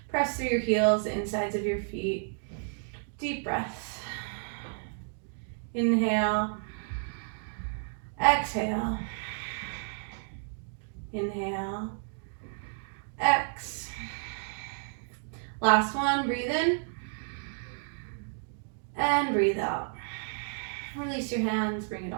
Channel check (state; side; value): silent; left; 57 dB below the other